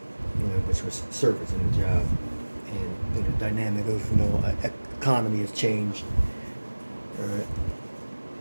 Which was service in the job. And the dynamic of economy has changed. Alright.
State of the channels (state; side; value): inverted; both; correlation -1.00